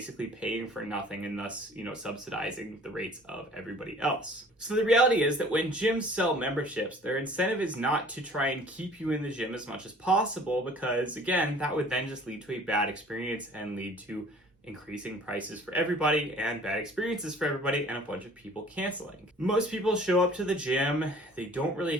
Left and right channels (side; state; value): both; normal; correlation 0.51